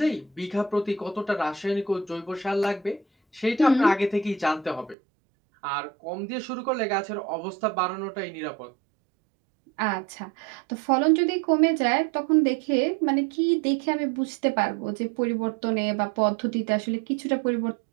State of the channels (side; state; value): left; drops out; at 5.0 s